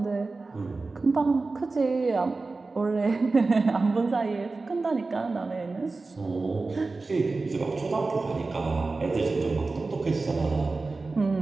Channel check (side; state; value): left; quieter; 3.7 dB